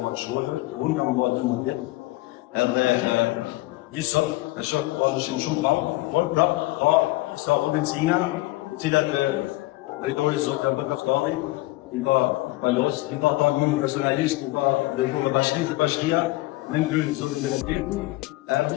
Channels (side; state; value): right; quieter; 19.5 dB